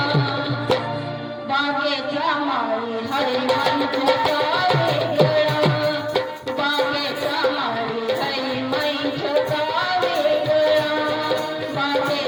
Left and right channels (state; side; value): identical; both; correlation 1.00